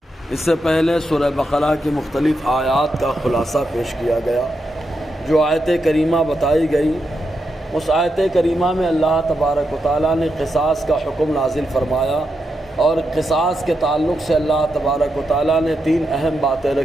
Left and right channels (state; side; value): normal; both; correlation 0.85